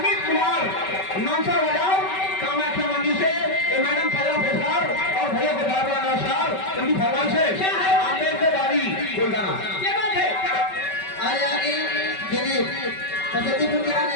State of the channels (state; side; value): late; right; 5.2 ms